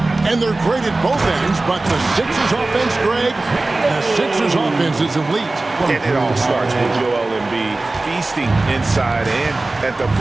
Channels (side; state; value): left; quieter; 3.1 dB